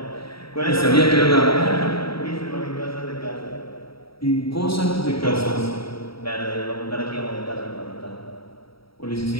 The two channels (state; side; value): late; right; 0.75 ms